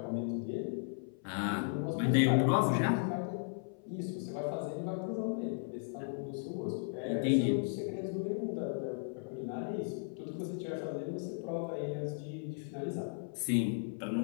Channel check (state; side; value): silent; right; 54 dB below the other